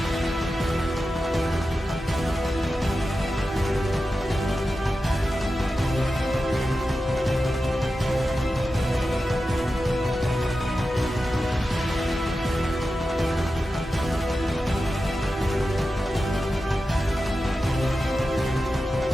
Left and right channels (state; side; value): normal; both; correlation 0.92